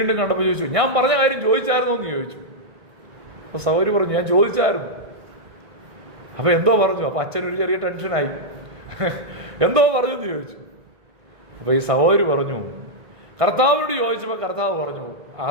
കണ്ടപ്പോൾ ചോദിച്ചു, ഞാൻ പറഞ്ഞ കാര്യം ചോദിച്ചായിരുന്നോ എന്ന് ചോദിച്ചു. അപ്പോൾ സഹോദരി പറഞ്ഞു, ഞാൻ ചോദിച്ചായിരുന്നു. അപ്പോൾ എന്തോ പറഞ്ഞു. അപ്പോൾ അച്ഛനൊരു ചെറിയ ടെൻഷനായി. എന്തോ പറഞ്ഞു എന്ന് ചോദിച്ചു. അപ്പോൾ ഈ സഹോദരി പറഞ്ഞു, കർത്താവിനോട് ചോദിച്ചപ്പോൾ കർത്താവ് പറഞ്ഞു,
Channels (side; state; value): left; late; 1.6 ms